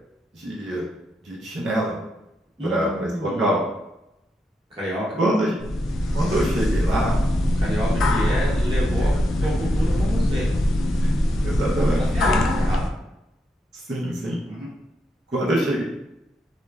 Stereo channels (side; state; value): both; normal; correlation 0.83